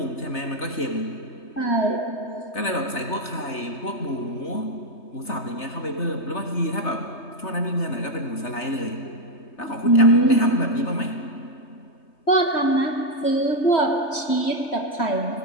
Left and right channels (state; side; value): late; right; 3.3 ms